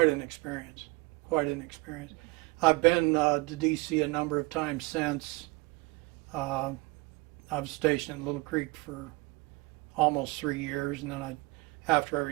an experience, I've been to D.C. a number of times since. I was stationed in Little Creek for almost 3 years, and then after I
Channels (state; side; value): quieter; left; 24.2 dB